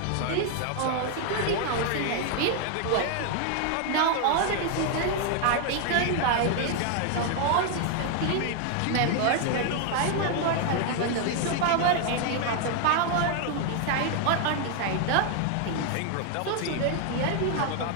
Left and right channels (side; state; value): both; different; correlation 0.00